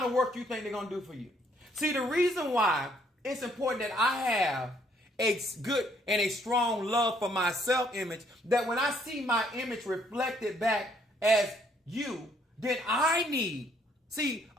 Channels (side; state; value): both; normal; correlation 0.67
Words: of work you think they're going to do for you? See, the reason why it's important that I have a good and a strong love for my self-image, that when I see my image reflected back as you, then I need. See,